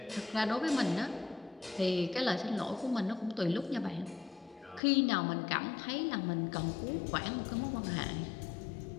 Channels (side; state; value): right; drops out; at 4.8 s